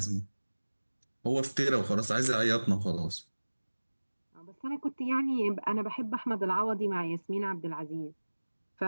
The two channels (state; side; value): inverted; both; correlation -1.00